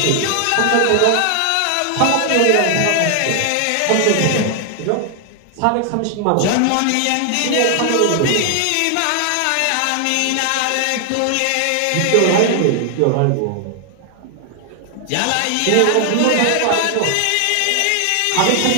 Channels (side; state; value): both; different; correlation 0.00